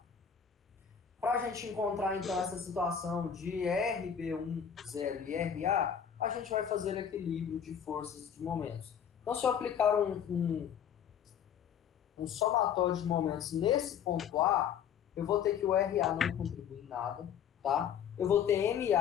Para a gente encontrar então essa situação de RB1 zero e RA, a gente vai fazer equilíbrio de forças de momentos. Então, se eu aplicar um somatório de momentos nesse ponto A, eu vou ter que o RA não contribui em nada, tá? Eu vou ter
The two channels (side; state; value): right; quieter; 8.3 dB